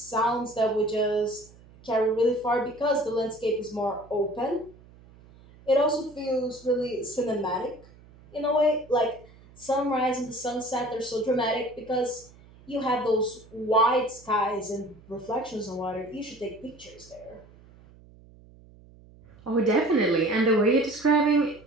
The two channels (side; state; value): right; noise; hum, 24 dB below the sound